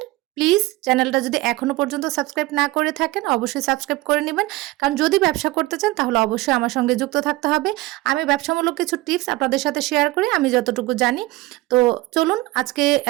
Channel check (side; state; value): left; quieter; 19.7 dB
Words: প্লিজ চ্যানেলটা যদি এখনো পর্যন্ত সাবস্ক্রাইব না করে থাকেন অবশ্যই সাবস্ক্রাইব করে নেবেন, কারণ যদি ব্যবসা করতে চান তাহলে অবশ্যই আমার সঙ্গে যুক্ত থাকতে হবে। আমি ব্যবসামূলক কিছু টিপস আপনাদের সাথে শেয়ার করি আমি যতটুকু জানি। তো চলুন আজকে